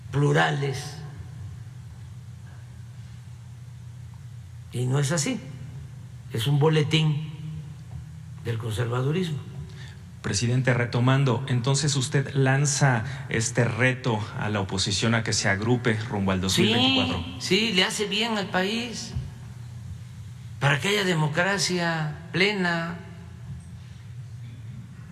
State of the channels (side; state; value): both; identical; correlation 1.00